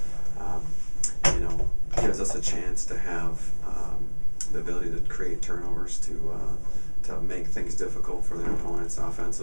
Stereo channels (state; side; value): inverted; both; correlation -1.00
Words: gives us a chance to have the ability to create turnovers, to make things difficult for the opponents